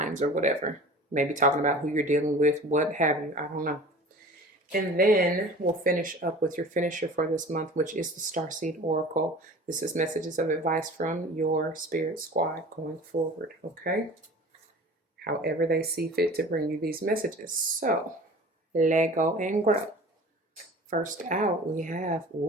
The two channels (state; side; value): normal; both; correlation 0.42